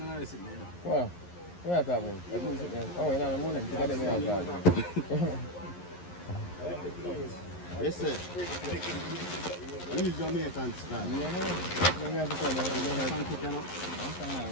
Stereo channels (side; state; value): right; late; 11 ms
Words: Wow. Where are that one? I think it's there. Oh, you're not the morning. You got them here that. Yes, sir. We use Jamaican style. Yeah, no. You have to come here.